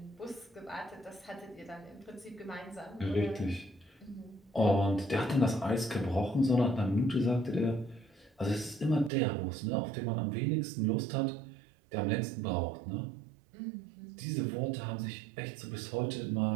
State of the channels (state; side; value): drops out; left; at 9.1 s